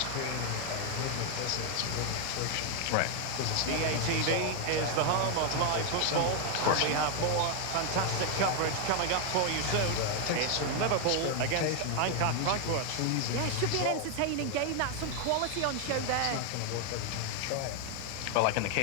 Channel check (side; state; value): both; different; correlation 0.01